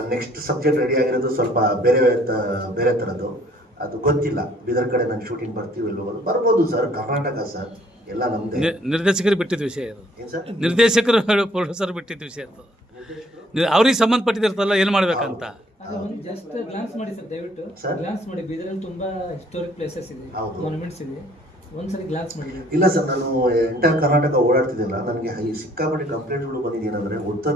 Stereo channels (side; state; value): both; normal; correlation 0.60